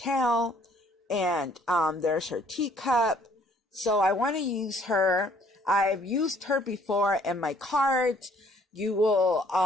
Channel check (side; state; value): both; normal; correlation 0.61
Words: And there's her teacup. So I want to use her. I've used her before in my cards. You will,